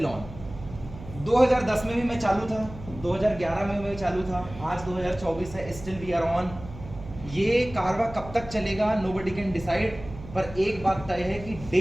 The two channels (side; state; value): right; noise; hum, 14 dB below the sound